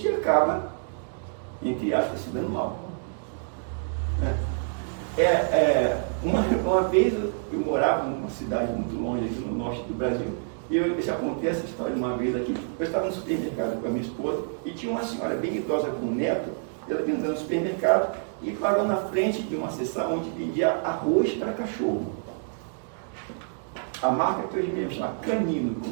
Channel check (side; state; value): left; silent; digital silence